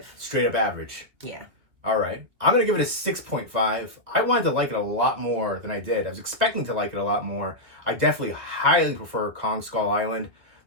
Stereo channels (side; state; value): left; late; 2.2 ms